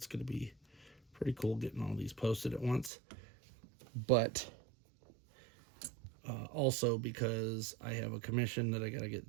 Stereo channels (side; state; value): left; drops out; at 2.9 s